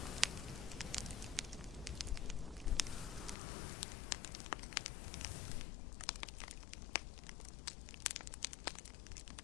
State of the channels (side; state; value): right; drops out; at 3.4 s